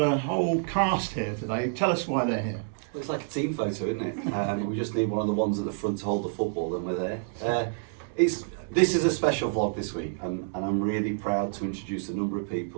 whole cast here today. Tell us why they're here. Well, it's like a team photo, isn't it? We just need one of the ones at the front to hold the football, and we're there. This is a special vlog this week, and I'm really proud to introduce a number of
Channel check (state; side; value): silent; left; digital silence